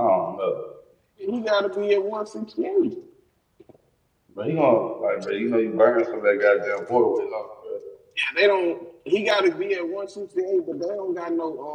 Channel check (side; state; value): both; identical; correlation 1.00